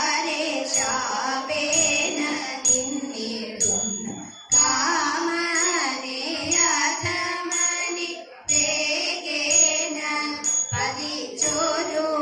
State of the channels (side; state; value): both; identical; correlation 1.00